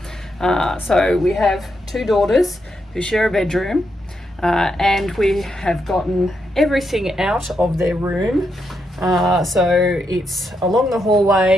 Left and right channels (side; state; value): both; normal; correlation 0.81